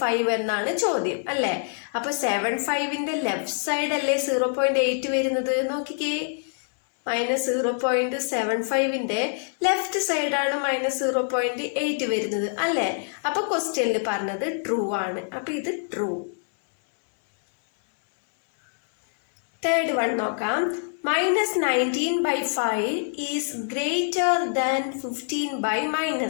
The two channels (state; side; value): silent; right; digital silence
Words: എന്നാണ് ചോദ്യം അല്ലേ? അപ്പൊ 75ന്റെ ലെഫ്റ്റ് സൈഡ് അല്ലേ 0.8 വരുന്നത്? നോക്കിക്കേ. -0.75ന്റെ ലെഫ്റ്റ് സൈഡാണ് -0.8 വരുന്നത് അല്ലേ? അപ്പൊ ക്വസ്റ്റ്യനിൽ പറഞ്ഞത് ട്രൂ ആണ്. അപ്പൊ ഇത് ട്രൂ. തേർഡ് വൺ നോക്കാം. -19/5 ഈസ് ഗ്രേറ്റർ ദാൻ